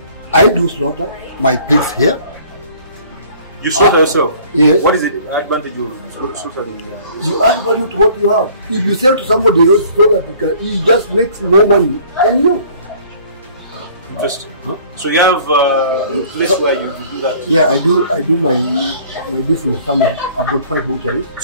I do slaughter my pigs here. You slaughter yourself? Yes. What is the advantage of slaughtering? You add value to what you have. If you sell to somebody else, he just makes more money than you. Interesting. Huh? So you have a place where you do that? Yeah, I do my business somewhere. I've got 5 butcheries.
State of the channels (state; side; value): inverted; both; correlation -0.53